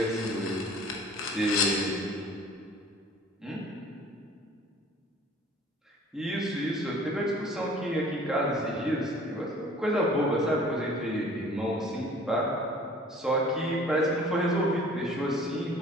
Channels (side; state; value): both; normal; correlation 0.50